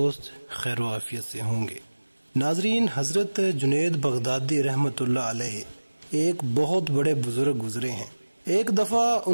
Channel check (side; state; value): both; inverted; correlation -1.00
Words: خیر و عافیت سے ہوں گے۔ ناظرین، حضرت جنید بغدادی رحمۃ اللہ علیہ ایک بہت بڑے بزرگ گزرے ہیں۔ ایک دفعہ